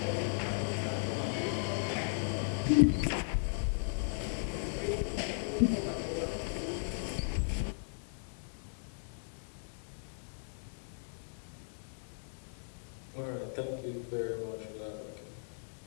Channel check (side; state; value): right; silent; digital silence